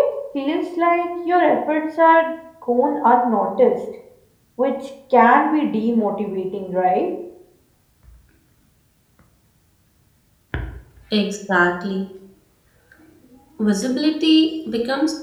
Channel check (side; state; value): both; identical; correlation 1.00